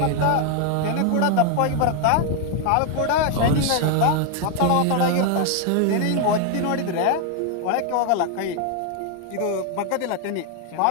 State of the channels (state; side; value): different; both; correlation 0.01